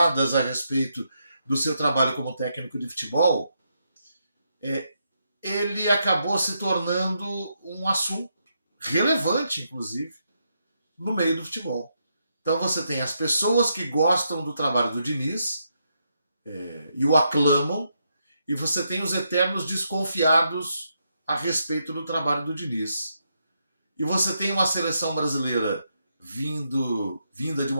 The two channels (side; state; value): both; inverted; correlation -0.80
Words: a respeito do seu trabalho como técnico de futebol, ele acabou se tornando um assunto relevante, inclusive, no meio do futebol. Então você tem as pessoas que gostam do trabalho do Diniz e o aclamam, e você tem os eternos desconfiados a respeito do trabalho do Diniz. E você tem uma seleção brasileira vinda de